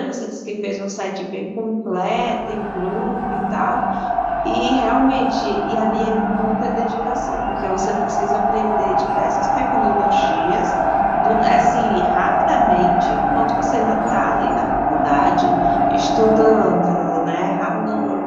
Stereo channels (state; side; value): identical; both; correlation 1.00